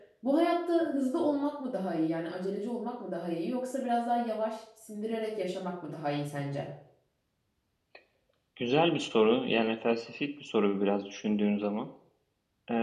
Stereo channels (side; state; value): both; identical; correlation 1.00